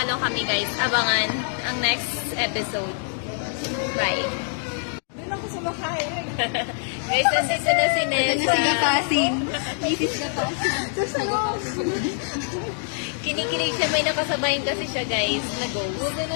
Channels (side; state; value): right; silent; 59 dB below the other